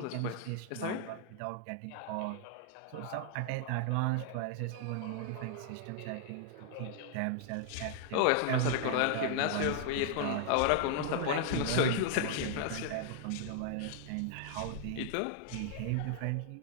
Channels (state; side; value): different; both; correlation 0.00